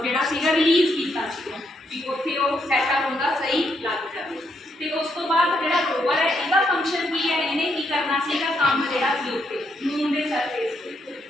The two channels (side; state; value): both; normal; correlation 0.77